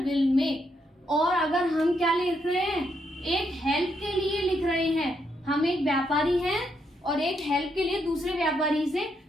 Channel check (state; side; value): normal; both; correlation 0.78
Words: बिल में। और अगर हम क्या लिख रहे हैं, एक हेल्प के लिए लिख रहे हैं, हम एक व्यापारी हैं और एक हेल्प के लिए दूसरे व्यापारी से